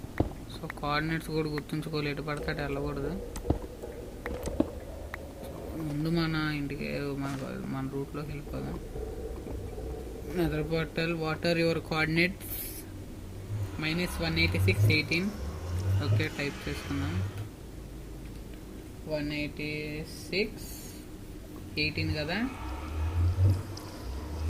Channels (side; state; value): both; identical; correlation 1.00